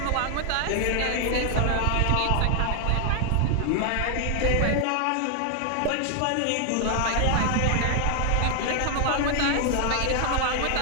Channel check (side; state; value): both; different; correlation 0.00